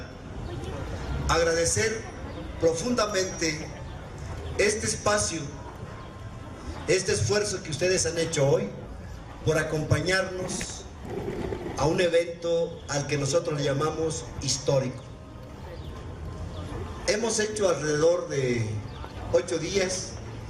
agradecer profundamente este espacio, este esfuerzo que ustedes han hecho hoy por acompañarnos a un evento al que nosotros le llamamos histórico. Hemos hecho alrededor de 8 días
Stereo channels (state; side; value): identical; both; correlation 1.00